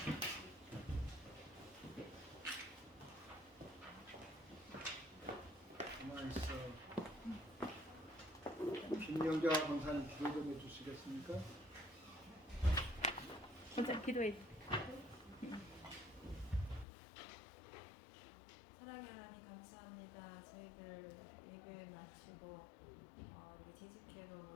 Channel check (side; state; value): right; drops out; at 16.9 s